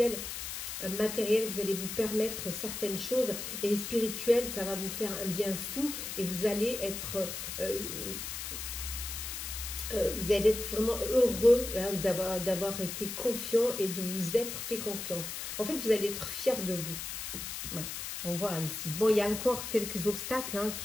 Matériel, vous allez vous permettre certaines choses, et spirituel, ça va vous faire un bien fou et vous allez être vraiment heureux d'avoir été confiant et de vous être fait confiance. En fait, vous allez être fier de vous. Ouais. On voit ici. Bon, il y a encore quelques obstacles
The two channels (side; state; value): left; noise; hiss, 6 dB below the sound